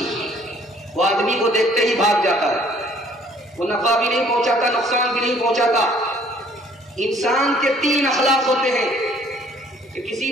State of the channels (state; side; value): normal; both; correlation 0.58